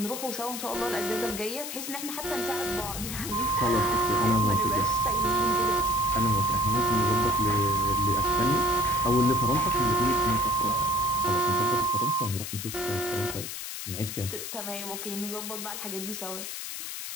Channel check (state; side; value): noise; left; hiss, 7 dB below the sound